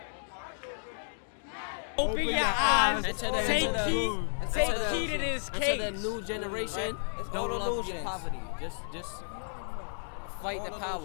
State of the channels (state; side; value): silent; right; digital silence